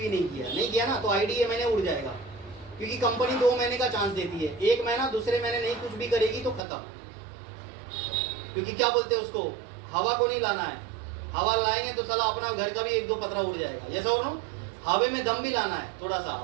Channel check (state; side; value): drops out; left; at 6.6 s